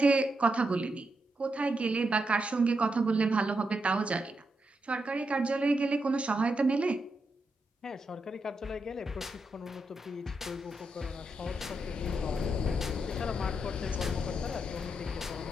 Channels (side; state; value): both; normal; correlation 0.84